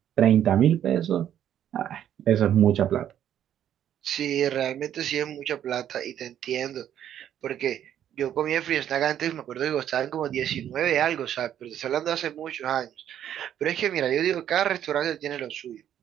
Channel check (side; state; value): left; quieter; 10.4 dB